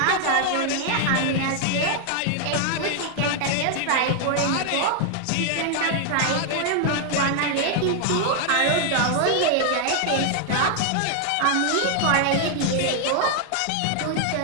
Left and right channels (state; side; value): different; both; correlation 0.00